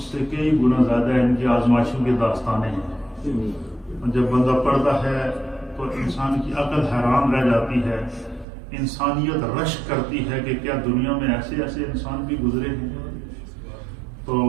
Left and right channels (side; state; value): left; drops out; at 8.5 s